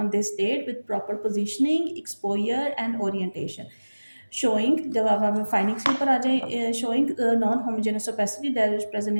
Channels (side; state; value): both; inverted; correlation -1.00